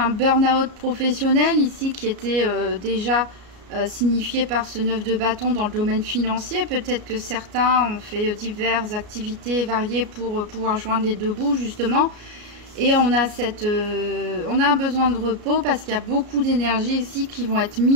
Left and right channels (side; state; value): left; late; 33 ms